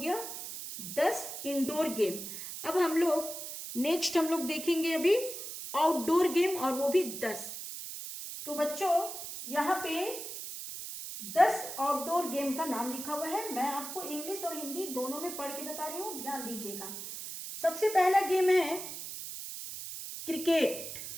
10 इंडोर गेम। अब हम लोग देखेंगे अभी आउटडोर गेम, और वो भी 10। तो बच्चों यहाँ पे 10 आउटडोर गेम का नाम लिखा हुआ है। मैं आपको इंग्लिश और हिंदी दोनों में पढ़ के बता रही हूँ, ध्यान दीजिएगा। सबसे पहला गेम है क्रिकेट।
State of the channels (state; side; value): noise; right; hiss, 8 dB below the sound